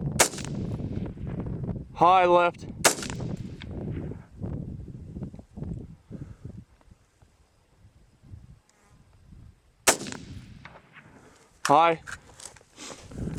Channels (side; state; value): both; identical; correlation 1.00